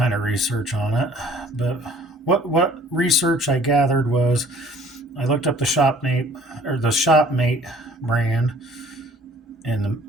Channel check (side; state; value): both; normal; correlation 0.53